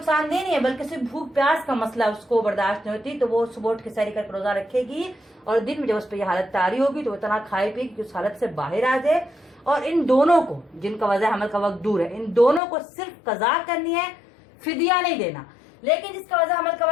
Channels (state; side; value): drops out; right; at 12.6 s